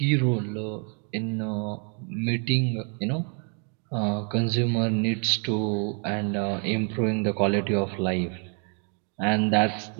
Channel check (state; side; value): quieter; left; 39.9 dB